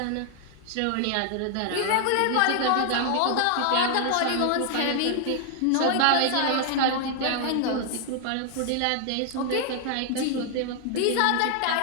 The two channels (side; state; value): both; different; correlation 0.00